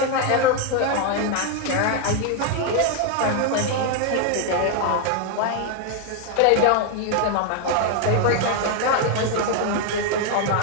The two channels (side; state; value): both; different; correlation 0.01